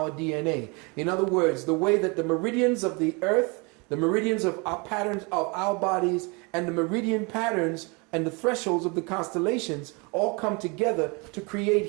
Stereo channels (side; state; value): left; quieter; 29.9 dB